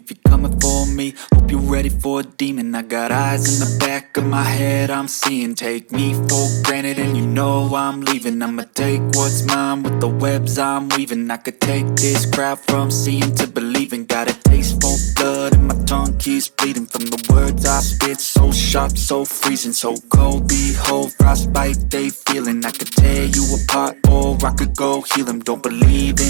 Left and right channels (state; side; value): silent; left; digital silence